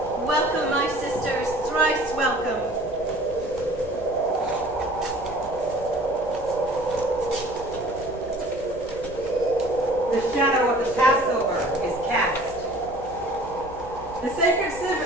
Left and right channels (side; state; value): both; normal; correlation 0.49